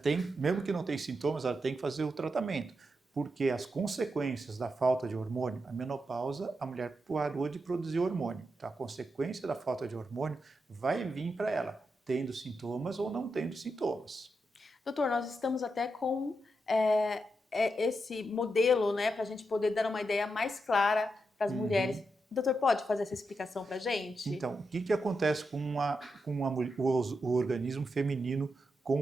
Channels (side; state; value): both; normal; correlation 0.85